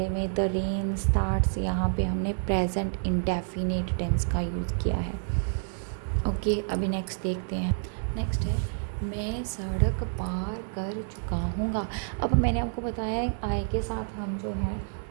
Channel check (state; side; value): silent; left; digital silence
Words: में द रेन स्टार्ट्स, यहाँ पे हमने प्रेजेंट इंडेफिनिट टेंस का यूज़ किया है। ओके, अभी नेक्स्ट देखते हैं। नेक्स्ट है, मैं सड़क पार कर चुका हूँगा। अब मैंने आपको बताया है आई के साथ हम जो है